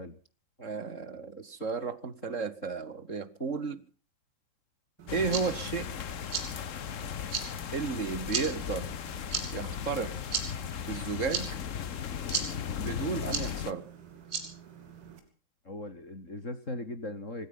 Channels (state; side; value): late; right; 3.7 ms